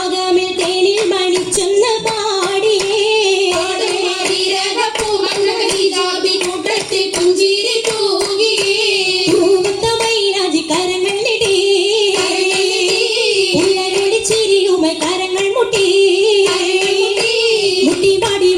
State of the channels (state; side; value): identical; both; correlation 1.00